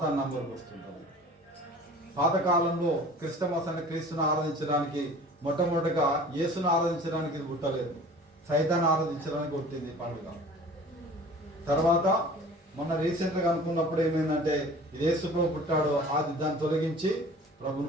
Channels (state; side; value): normal; both; correlation 0.45